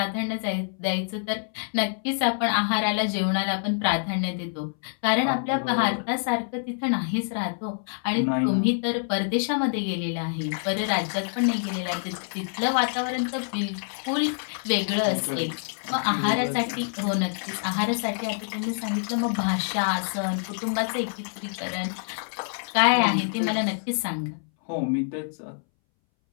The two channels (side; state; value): right; silent; 61 dB below the other